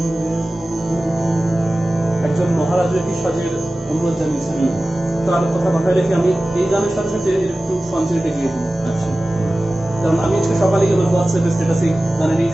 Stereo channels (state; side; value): normal; both; correlation 0.96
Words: একজন মহারাজের কি সাজের অনুরোধ জানিয়েছেন, তার কথা মাথায় রেখে আমি এই গানের সাথে সাথে একটু সঞ্চয়টা গিয়ে দিই। আচ্ছা, কারণ আমি আজকে সকালে আমার হোয়াটসঅ্যাপে স্ট্যাটাসে গানের এই